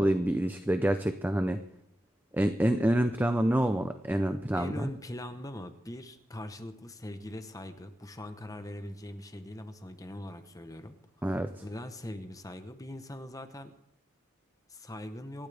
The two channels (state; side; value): normal; both; correlation 0.93